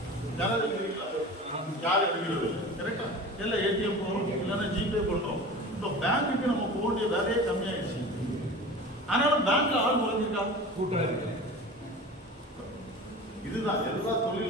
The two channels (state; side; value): normal; both; correlation 0.35